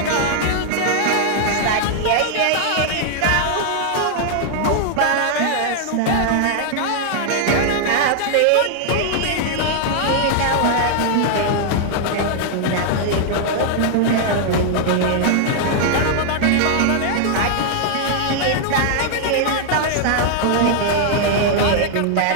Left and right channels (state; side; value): different; both; correlation -0.01